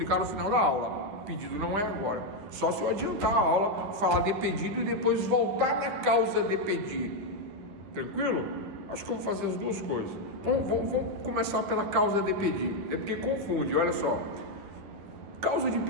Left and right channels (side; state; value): left; late; 10 ms